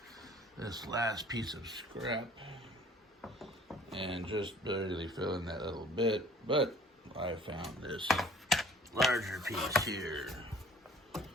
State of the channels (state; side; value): normal; both; correlation 0.52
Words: this last piece of scrap and just barely fill in that little bit, but I found this larger piece here